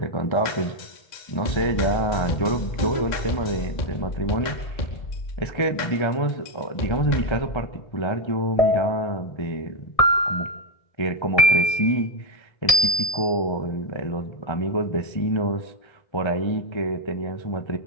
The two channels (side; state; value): right; late; 1.7 ms